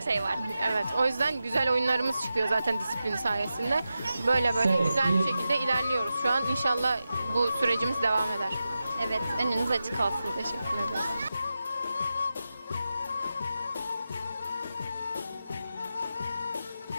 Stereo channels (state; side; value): inverted; both; correlation -0.91